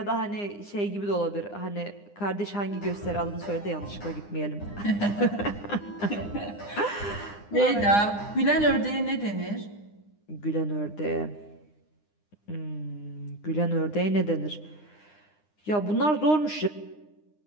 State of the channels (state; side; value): late; right; 9.8 ms